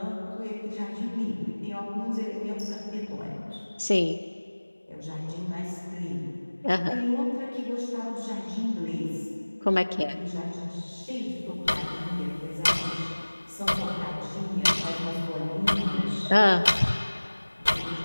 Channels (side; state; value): both; inverted; correlation -1.00